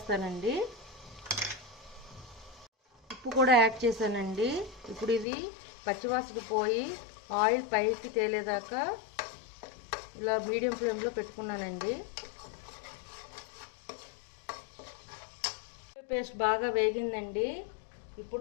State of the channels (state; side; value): drops out; right; at 5.2 s